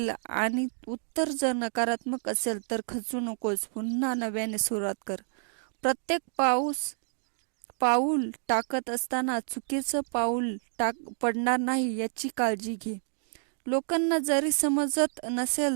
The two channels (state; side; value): silent; left; digital silence